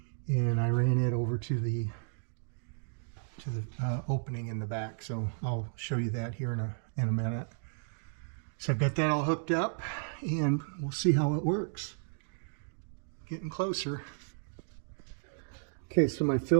and I ran it over to the opening in the back. So I'll show you that here in a minute. So I've got that all hooked up, and we'll see how it works. Getting closer. Okay, so my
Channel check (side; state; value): left; silent; digital silence